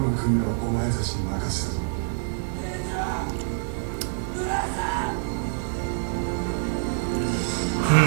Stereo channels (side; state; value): left; silent; digital silence